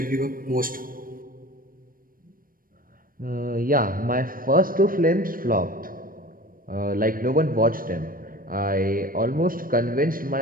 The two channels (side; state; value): left; late; 0.41 ms